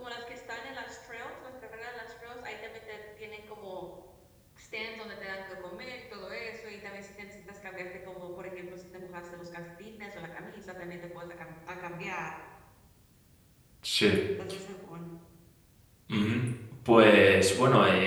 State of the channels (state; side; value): identical; both; correlation 1.00